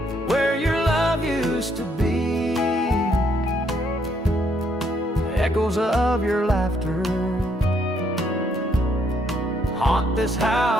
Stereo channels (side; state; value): both; normal; correlation 0.71